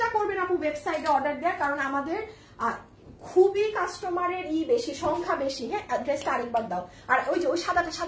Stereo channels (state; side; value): identical; both; correlation 1.00